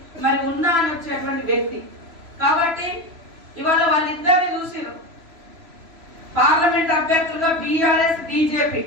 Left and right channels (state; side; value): late; left; 3.0 ms